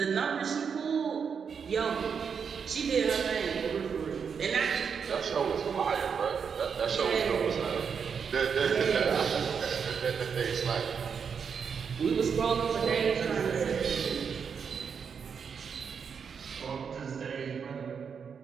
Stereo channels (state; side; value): quieter; left; 6.5 dB